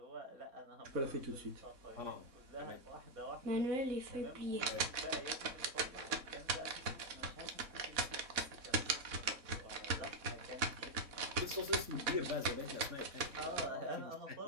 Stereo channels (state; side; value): late; left; 4.1 ms